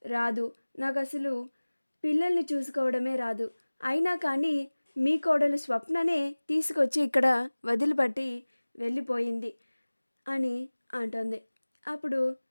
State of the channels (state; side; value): inverted; both; correlation -1.00